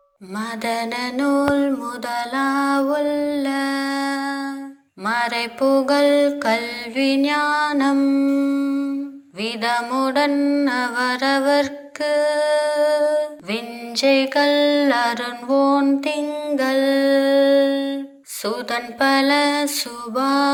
மதன நூல் முதலாவுள்ள மறைபுகழ் கல்வி ஞானம் விதமுடன் அவரவர்க்கு விஞ்சைகள் அருண்வோன் திங்கள் சுதன் பல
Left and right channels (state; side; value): identical; both; correlation 1.00